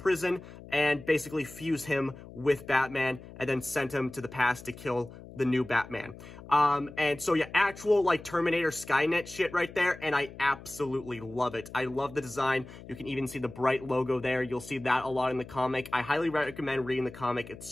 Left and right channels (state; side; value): noise; left; hum, 16 dB below the sound